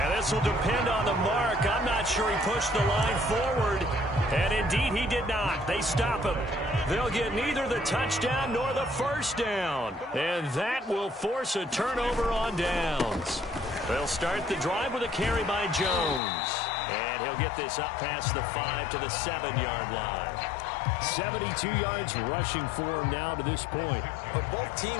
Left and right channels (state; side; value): drops out; right; at 16.2 s